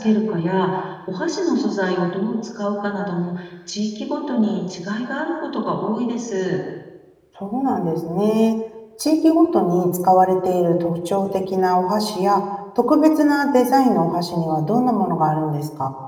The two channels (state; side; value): identical; both; correlation 1.00